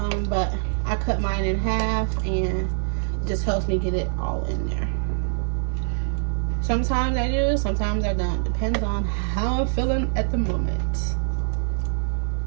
but I cut mine in half and it just helps me get it all in there. Sometimes I do, sometimes I don't. Depends on how I'm feeling at the moment.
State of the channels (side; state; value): left; silent; 62 dB below the other